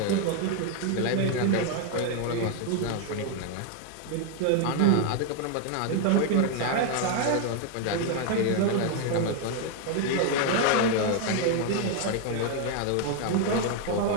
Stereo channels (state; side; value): different; both; correlation 0.01